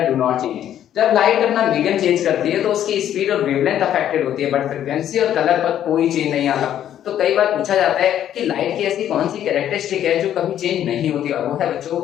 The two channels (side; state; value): right; quieter; 10.8 dB